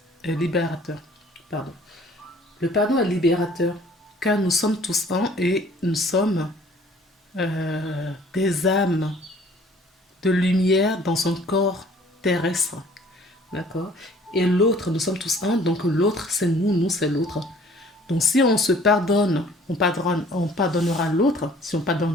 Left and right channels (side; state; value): both; normal; correlation 0.54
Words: Pardon. Le pardon est libérateur, car nous sommes tous un et nous sommes des âmes de lumière dans un corps terrestre. D'accord? Et l'autre, nous sommes tous un, donc l'autre c'est nous, nous c'est l'autre. Donc si on se pardonne, on pardonnera l'autre. Si on